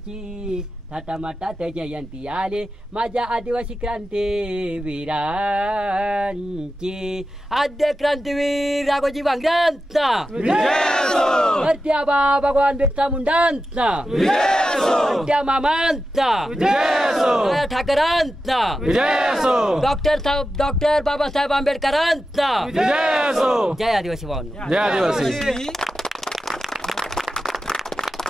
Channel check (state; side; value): normal; both; correlation 0.91